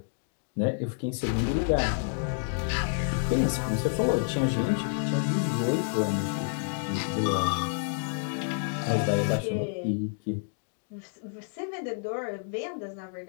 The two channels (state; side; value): silent; right; digital silence